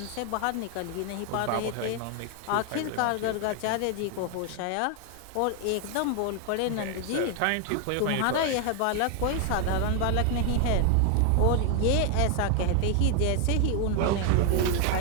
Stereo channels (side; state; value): both; different; correlation 0.01